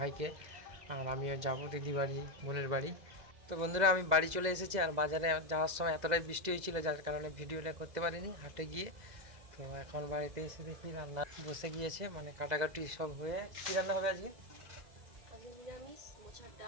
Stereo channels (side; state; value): left; late; 2.0 ms